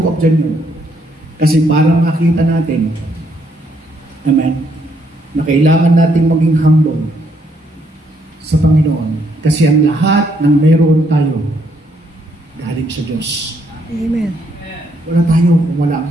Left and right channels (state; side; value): normal; both; correlation 0.72